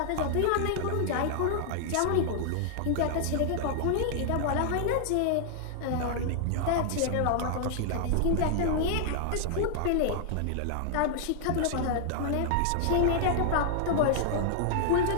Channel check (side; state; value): both; different; correlation -0.01